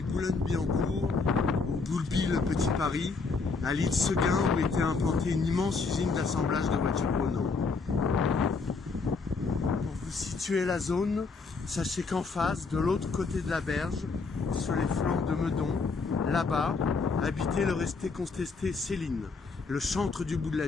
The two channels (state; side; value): quieter; right; 4.4 dB